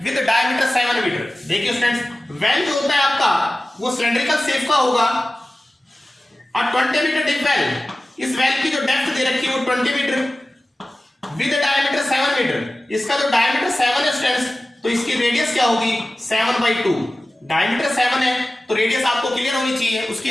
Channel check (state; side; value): normal; both; correlation 0.96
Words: with diameter 7 metre. देखिए स्टूडेंट्स, वेल जो होता है आपका वो सिलेंड्रिकल शेप का होगा। a 20 मीटर डीप वेल, इस वेल की जो डेप्थ दे रखी है वो 20 मीटर विद डायमीटर 7 मीटर। इसका जो डायमीटर 7 है स्टूडेंट्स, तो इसकी रेडियस क्या होगी 7/2। डायमीटर 7 है तो रेडियस आपको क्लियर होनी चाहिए, उसकी